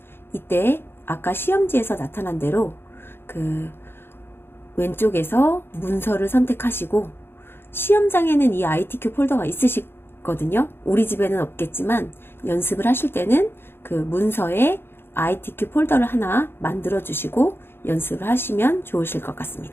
이때 아까 시험지에서 나타난 대로 그 왼쪽에서 문서를 선택하시고 시험장에는 이 ITQ 폴더가 있으시거든요. 우리 집에는 없겠지만 연습을 하실 때는 그 문서에 ITQ 폴더를 하나 만들어 주시고 연습을 하시면 좋으실 것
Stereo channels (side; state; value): right; late; 0.11 ms